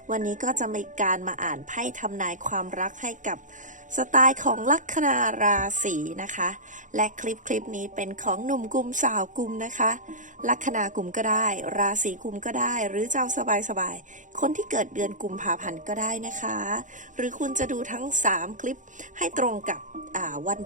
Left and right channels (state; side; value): late; left; 0.37 ms